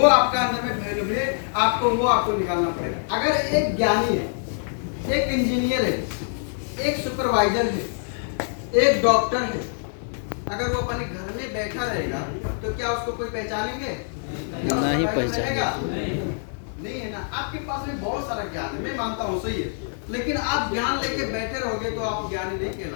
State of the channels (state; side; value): silent; right; 62 dB below the other